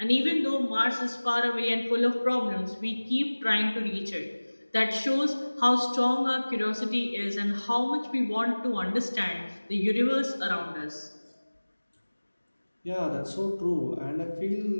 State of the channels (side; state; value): both; inverted; correlation -1.00